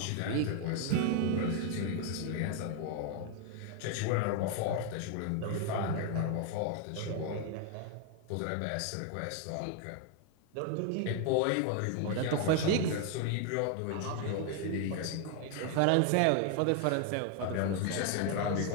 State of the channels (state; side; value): different; both; correlation 0.00